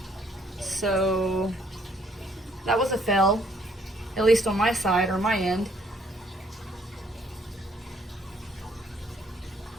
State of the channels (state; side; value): normal; both; correlation 0.65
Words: So that was a fail, at least on my side or my end.